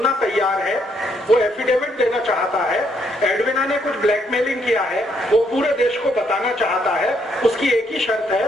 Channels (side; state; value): both; normal; correlation 0.72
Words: तैयार है, वो एफिडेविट देना चाहता है, एडविना ने कुछ ब्लैकमेलिंग किया है, वो पूरे देश को बताना चाहता है, उसकी एक ही शर्त